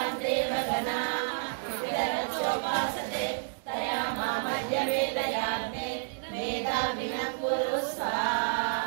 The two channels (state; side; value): silent; left; digital silence